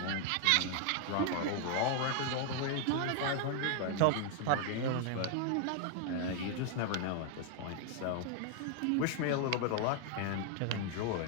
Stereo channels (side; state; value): both; different; correlation 0.00